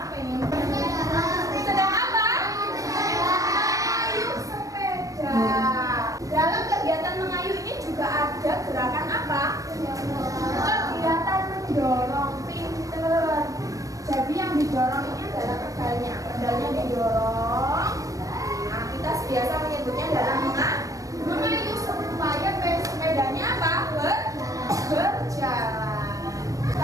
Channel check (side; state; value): left; late; 0.16 ms